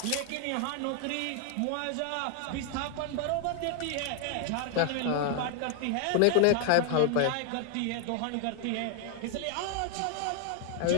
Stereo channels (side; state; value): both; different; correlation 0.00